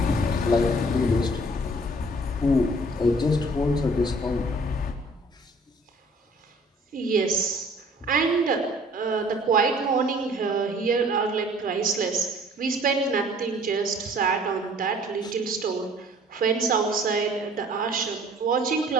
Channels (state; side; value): normal; both; correlation 0.54